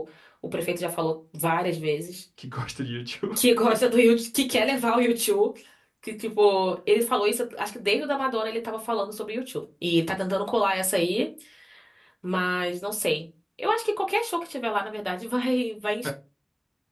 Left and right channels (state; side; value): identical; both; correlation 1.00